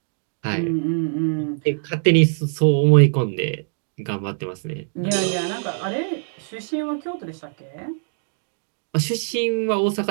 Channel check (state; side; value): silent; left; digital silence